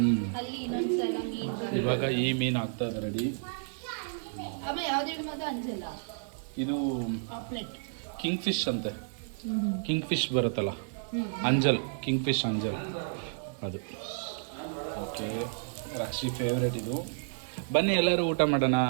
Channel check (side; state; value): left; silent; digital silence